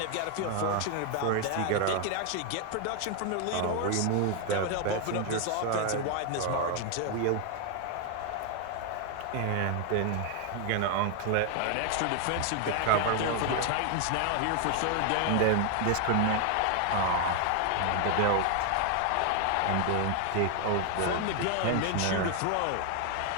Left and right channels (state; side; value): different; both; correlation 0.01